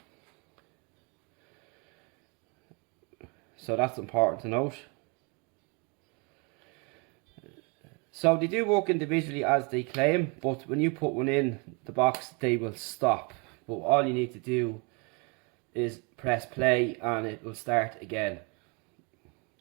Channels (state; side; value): quieter; left; 32.2 dB